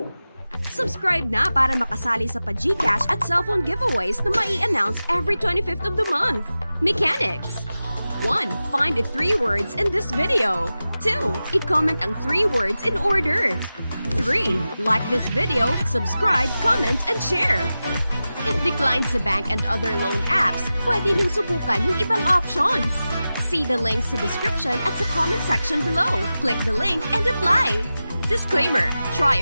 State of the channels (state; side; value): inverted; both; correlation -0.94